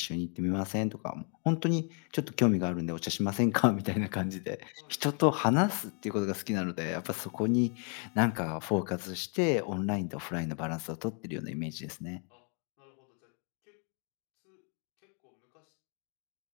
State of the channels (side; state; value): right; quieter; 39.8 dB